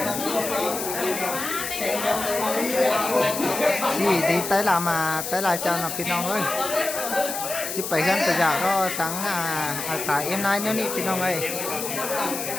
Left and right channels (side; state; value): left; noise; hiss, 5 dB below the sound